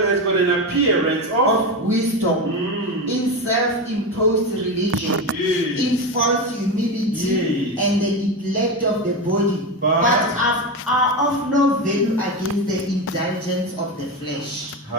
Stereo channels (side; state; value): both; normal; correlation 0.17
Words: got an appearance of Of wisdom in self-imposed religion, Yes. in false humility, Yes. and the neglect of the body, But- are of no value against the indulgence of the flesh.